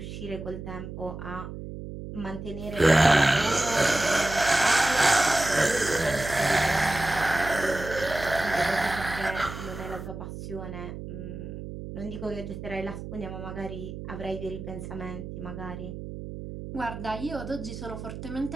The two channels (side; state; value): right; noise; hum, 9 dB below the sound